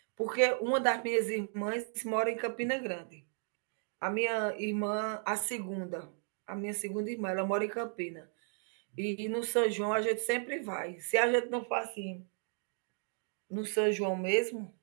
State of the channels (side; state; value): left; silent; 55 dB below the other